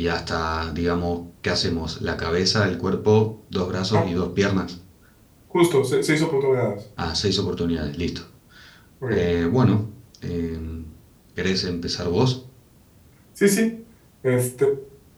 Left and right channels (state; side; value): identical; both; correlation 1.00